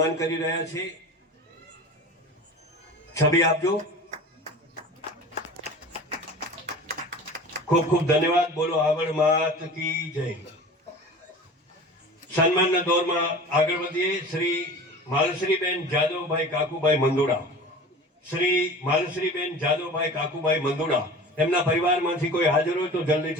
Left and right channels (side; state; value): both; normal; correlation 0.37